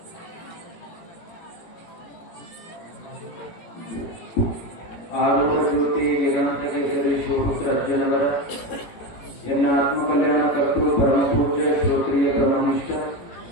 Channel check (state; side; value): late; right; 18 ms